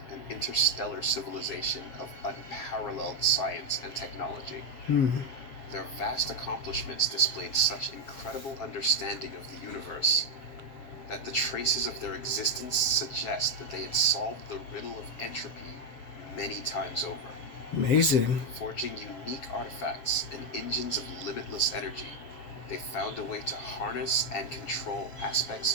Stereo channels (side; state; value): right; late; 7.3 ms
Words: an interstellar civilization of unparalleled science and technology. Their vast accomplishments displayed such incredible understanding of the universe that the traces of their existence suggest that they had solved the riddle of entropy many times over. Amazing. Forging unique artifacts and engines of limitless energy, they found a way to harness and control